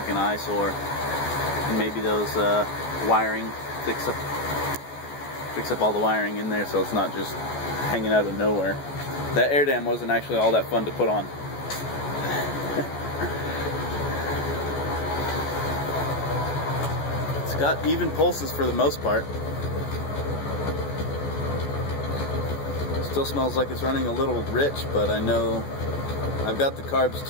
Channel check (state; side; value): late; right; 14 ms